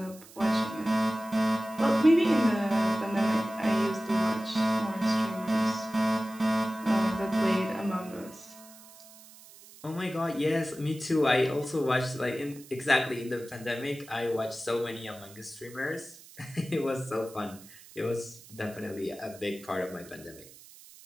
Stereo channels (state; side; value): noise; right; hiss, 21 dB below the sound